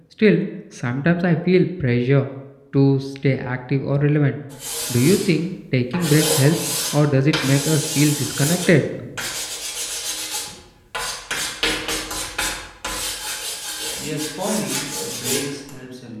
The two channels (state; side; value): identical; both; correlation 1.00